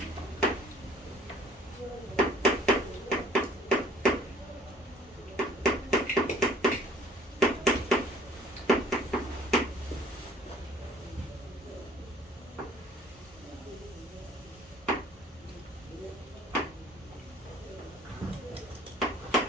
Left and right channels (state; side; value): normal; both; correlation 0.54